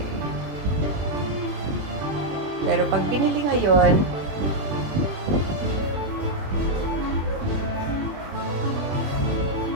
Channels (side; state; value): left; late; 21 ms